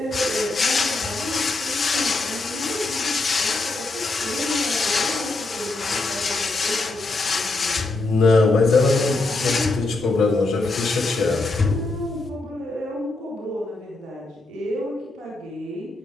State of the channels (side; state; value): right; quieter; 3.2 dB